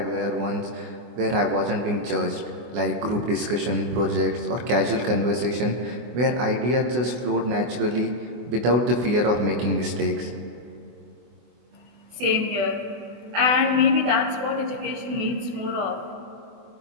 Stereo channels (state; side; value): late; left; 24 ms